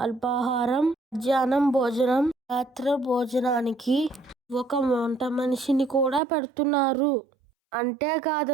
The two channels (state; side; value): drops out; left; at 6.2 s